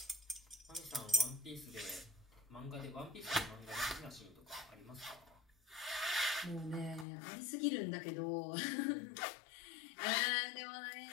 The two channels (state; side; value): drops out; right; at 7.1 s